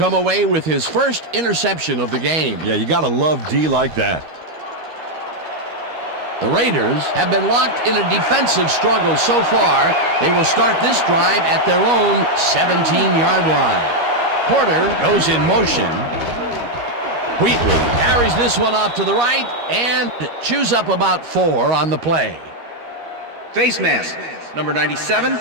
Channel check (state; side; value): late; left; 13 ms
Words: away with his first interception of the game. Yeah, you gotta love D like that. The Raiders have been locked in a defensive struggle so far. They will start this drive at their own 17-yard line. Porter goes in motion. Wheatley carries this one off to the right and chews up about 4 on the play. Face mask, number 97,